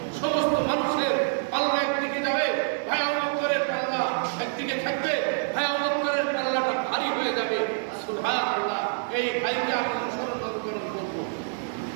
সমস্ত মানুষের পাল্লা একদিকে যাবে, ভাই আবু বকরের পাল্লা একদিকে থাকবে, ভাই আবু বকরের পাল্লাটা ভারী হয়ে যাবে। সুবহানাল্লাহ। এই ভাইকে আমি অনুসরণ করব।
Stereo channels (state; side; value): silent; left; digital silence